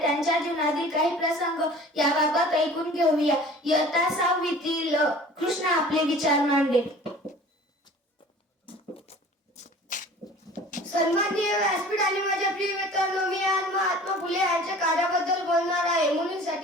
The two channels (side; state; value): both; normal; correlation 0.45